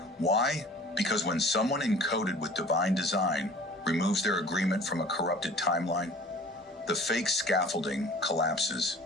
Why? Because when someone encoded with divine design removes their agreement from a corrupted timeline, the fake scaffolding collapses.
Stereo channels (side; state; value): both; normal; correlation 0.46